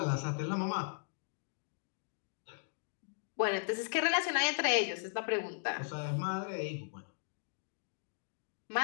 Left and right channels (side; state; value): right; silent; digital silence